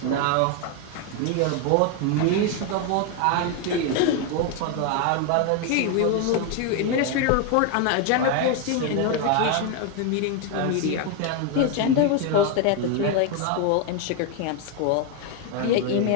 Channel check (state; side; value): different; both; correlation 0.01